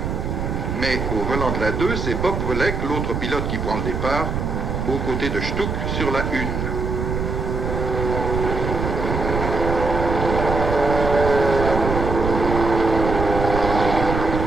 Mais au volant de la 2, c'est Bob Volek, l'autre pilote qui prend le départ, aux côtés de Stuck sur la 1.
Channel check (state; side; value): noise; right; rumble, 2 dB below the sound